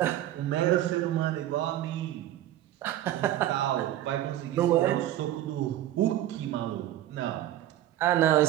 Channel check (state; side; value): quieter; left; 13.1 dB